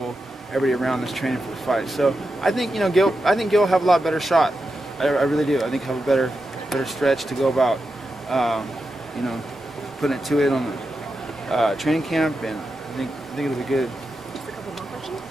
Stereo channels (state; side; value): normal; both; correlation 0.89